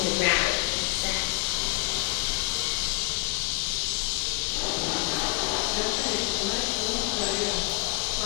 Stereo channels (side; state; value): right; quieter; 27.2 dB